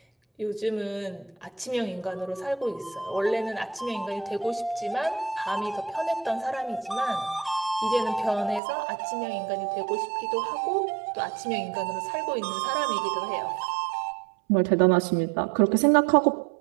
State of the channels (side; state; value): left; drops out; at 8.6 s